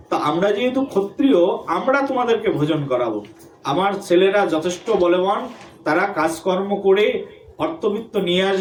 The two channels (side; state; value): both; identical; correlation 1.00